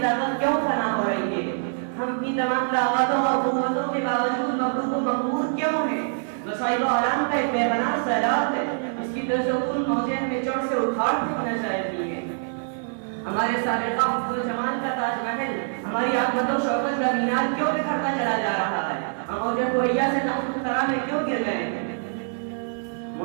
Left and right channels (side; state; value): left; silent; digital silence